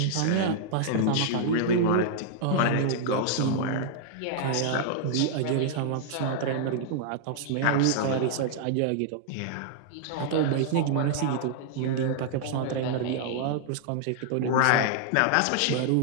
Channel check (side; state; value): both; different; correlation -0.01